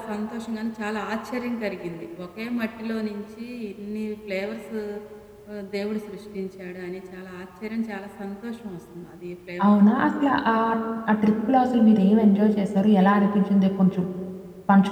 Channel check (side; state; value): both; identical; correlation 1.00